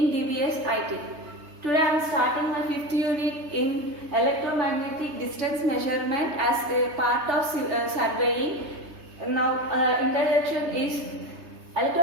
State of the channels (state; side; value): late; left; 3.3 ms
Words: DBS IT. Today I am starting my 5th unit in Electromagnetic Distance Measurement as a part of surveying. Now introduction is